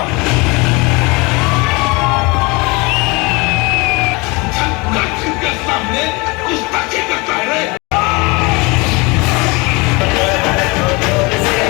के सामने गुस्ताखी करता है रे।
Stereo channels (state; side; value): quieter; right; 26.4 dB